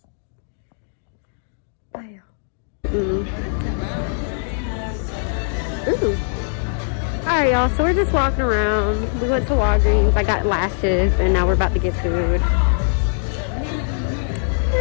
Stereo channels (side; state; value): right; silent; digital silence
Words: bye, y'all. Ooh. All right, y'all, so we're just walking around. We went to Walgreens. I got lashes, and now we're about to get food.